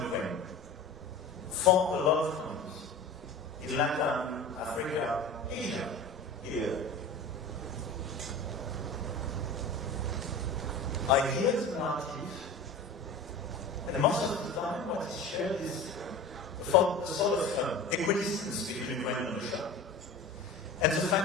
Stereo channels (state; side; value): quieter; right; 3.4 dB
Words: Ukraine, for a lot of countries, in Latin, Africa, Asia, here. I hear the narrative, and most of the time what is shared is the sort of equidistance between Ukraine and Russia. And the